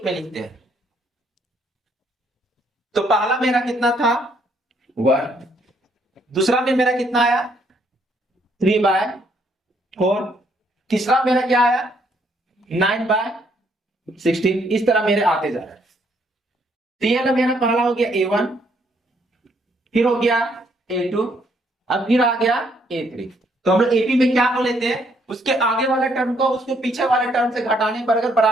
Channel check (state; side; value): normal; both; correlation 0.70